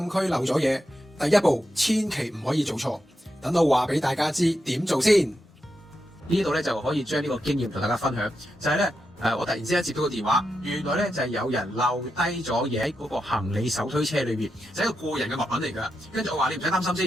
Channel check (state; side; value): normal; both; correlation 0.86